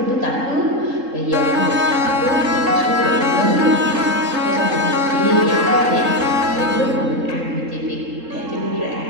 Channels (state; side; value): late; left; 3.7 ms